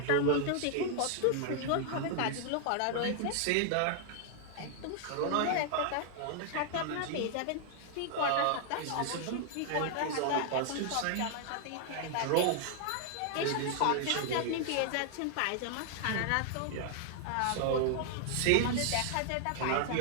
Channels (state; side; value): different; both; correlation 0.00